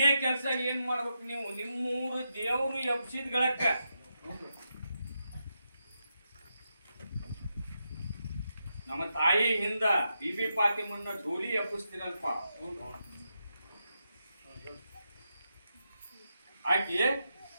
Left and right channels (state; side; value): inverted; both; correlation -0.85